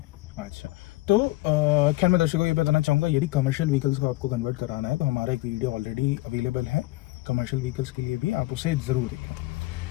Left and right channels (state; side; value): quieter; right; 19.1 dB